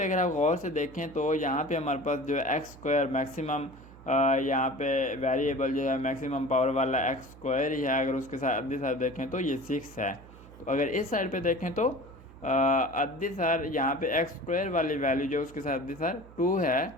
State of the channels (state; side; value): noise; right; hum, 20 dB below the sound